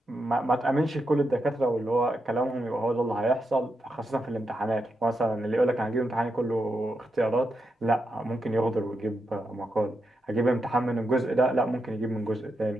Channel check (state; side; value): normal; both; correlation 0.85